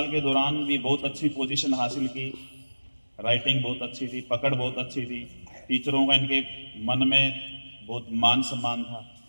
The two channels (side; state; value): both; inverted; correlation -1.00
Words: के दौरान भी बहुत अच्छी पोजीशन हासिल की। राइटिंग बहुत अच्छी थी, पकड़ बहुत अच्छी थी, टीचरों का इनके मन में बहुत मान सम्मान था।